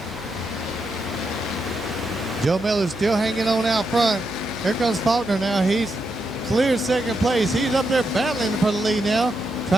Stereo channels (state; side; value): noise; right; hum, 19 dB below the sound